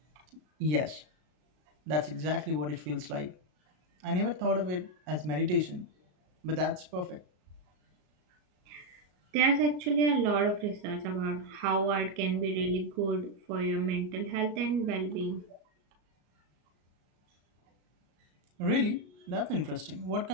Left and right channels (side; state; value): left; late; 33 ms